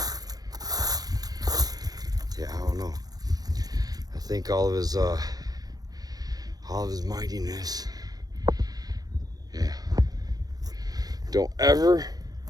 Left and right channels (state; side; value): late; left; 0.19 ms